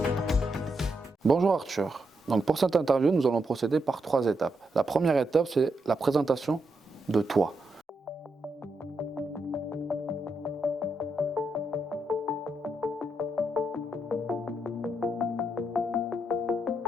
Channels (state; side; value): normal; both; correlation 0.81